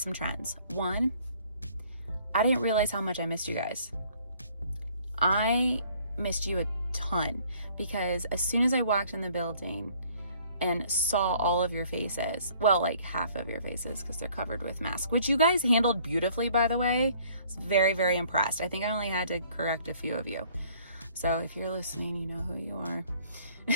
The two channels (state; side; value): inverted; both; correlation -0.58